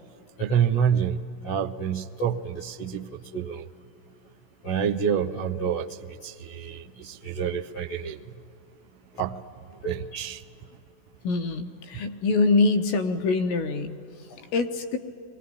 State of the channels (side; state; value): right; late; 16 ms